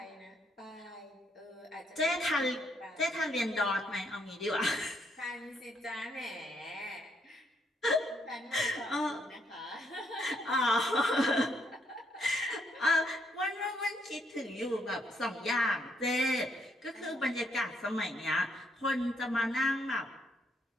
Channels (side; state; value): both; normal; correlation 0.73